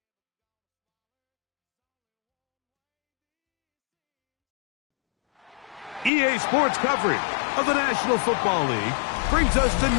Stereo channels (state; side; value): drops out; right; at 6.1 s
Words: EA Sports coverage of the National Football League brings us to